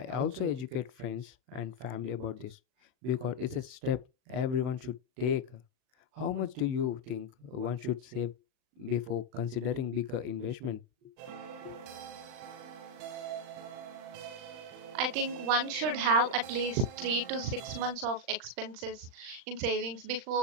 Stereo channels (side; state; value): left; late; 39 ms